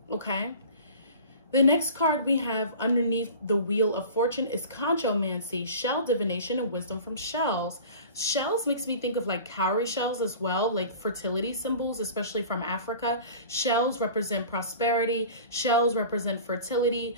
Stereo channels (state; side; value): inverted; both; correlation -0.40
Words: Okay? The next card we have underneath the Wheel of Fortune is Conchomancy, shell divination and wisdom from shells. Shells makes me think of like cowrie shells as well, like fertility symbols, especially from Africa. Shells represent prosperity. Shells represent fertility.